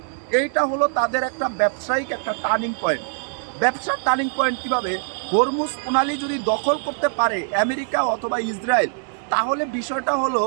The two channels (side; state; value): left; silent; 64 dB below the other